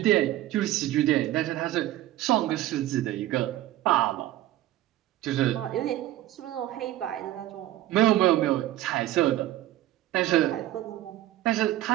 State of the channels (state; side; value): quieter; left; 14.7 dB